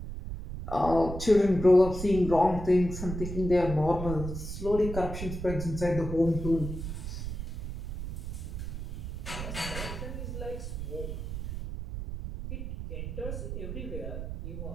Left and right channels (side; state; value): right; noise; rumble, 6 dB below the sound